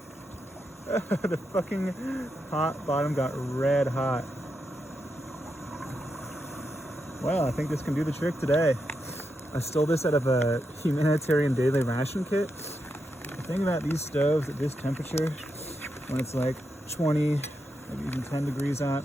The fucking hot bottom got red hot. Well, I think this can do the trick today. I stole this out of a humanitarian daily ration kit. The thing about these stoves at this temperature, when it's like 20, maybe even 10 degrees out,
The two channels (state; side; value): normal; both; correlation 0.85